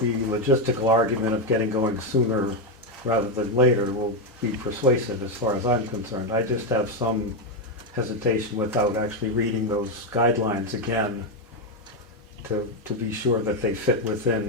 logistical argument of getting going sooner rather than later will be persuasive as far as I'm concerned. I just have some hesitation without actually reading those guidelines again to be sure that they fit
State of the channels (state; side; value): normal; both; correlation 0.06